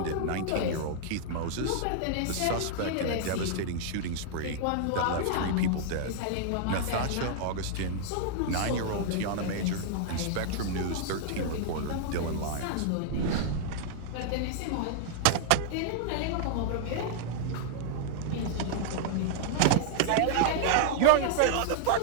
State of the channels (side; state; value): both; different; correlation -0.01